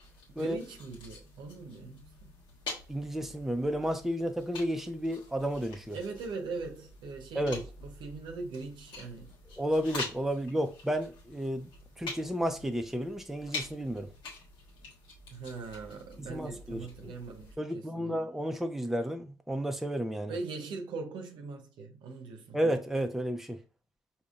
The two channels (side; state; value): both; normal; correlation 0.82